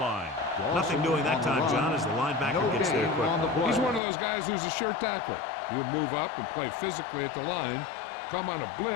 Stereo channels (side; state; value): right; drops out; at 4.0 s